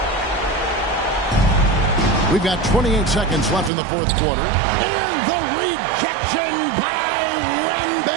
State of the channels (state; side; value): drops out; left; at 3.7 s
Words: We've got 28 seconds left in the fourth quarter. And the rejection by